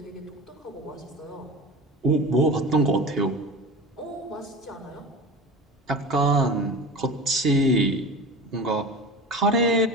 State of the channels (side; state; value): both; normal; correlation 0.33